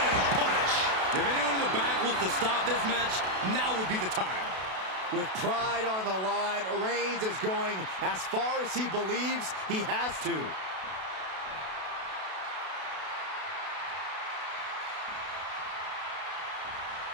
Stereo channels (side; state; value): left; late; 32 ms